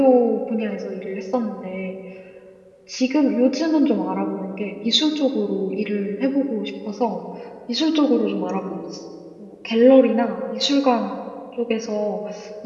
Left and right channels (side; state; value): both; identical; correlation 1.00